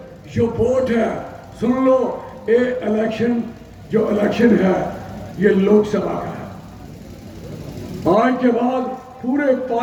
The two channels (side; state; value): both; identical; correlation 1.00